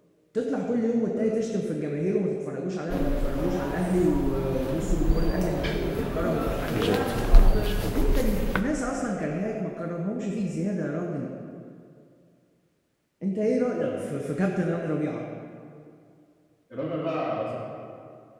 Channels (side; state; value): both; identical; correlation 1.00